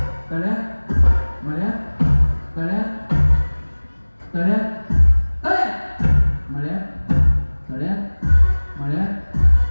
तळ्या मळ्या तळ्या तळ्या तळ्या मळ्या तळ्या मळ्या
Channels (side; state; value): both; inverted; correlation -1.00